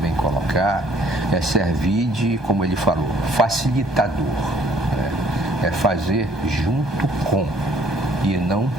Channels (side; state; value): both; normal; correlation 0.61